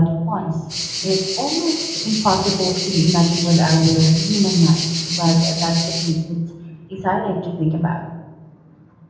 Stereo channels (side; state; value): both; identical; correlation 1.00